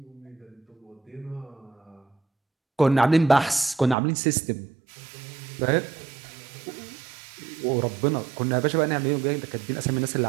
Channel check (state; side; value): drops out; left; at 4.0 s